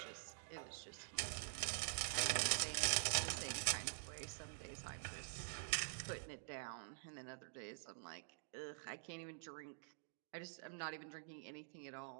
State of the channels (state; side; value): silent; left; digital silence